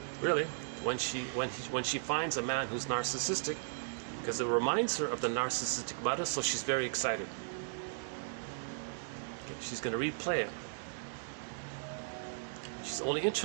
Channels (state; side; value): silent; left; digital silence